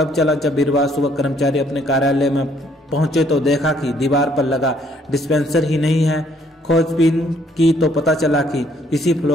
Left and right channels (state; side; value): normal; both; correlation 0.65